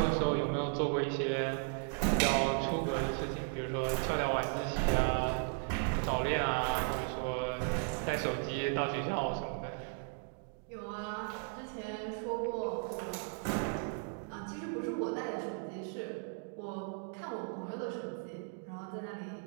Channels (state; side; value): silent; left; 54 dB below the other